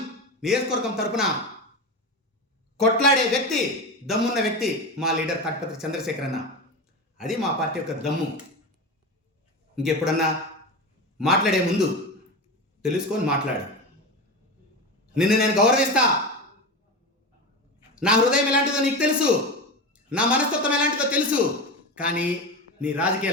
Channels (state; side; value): normal; both; correlation 0.23